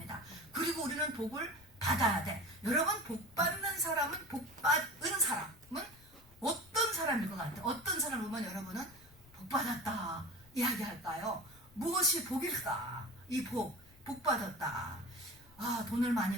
그리고 우리는 복을 받아야 돼. 여러분, 복받는 사람은, 복받은 사람은 어떤 사람일 것 같아요? 어떤 사람을 보면 여러분은 복받았다 이야기할까요? 무엇이 복일까? 이 복받았다. 아, 돈을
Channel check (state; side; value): noise; left; rumble, 26 dB below the sound